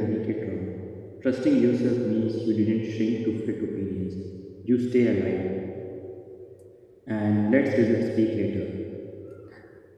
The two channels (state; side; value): identical; both; correlation 1.00